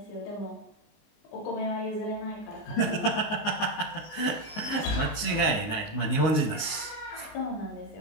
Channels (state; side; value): late; right; 19 ms